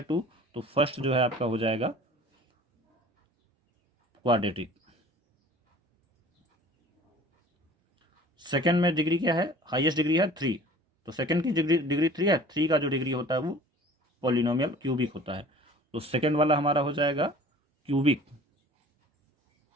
2। तो फर्स्ट जो है आपका हो जाएगा क्वाड्रेटिक। सेकेंड में डिग्री क्या है, हाईएस्ट डिग्री है 3। तो सेकेंड की डिग्री 3 है, 3 का जो डिग्री होता है वो पॉलिनोमियल क्यूबिक होता है। तो सेकेंड वाला हमारा हो जाएगा क्यूबिक।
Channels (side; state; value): both; normal; correlation 0.46